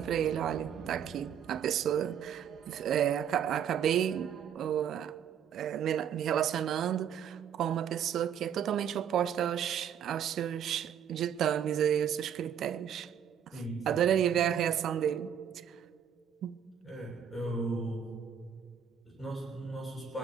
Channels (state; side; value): quieter; left; 8.6 dB